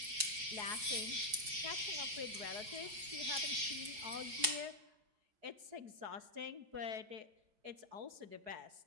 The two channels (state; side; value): late; left; 4.7 ms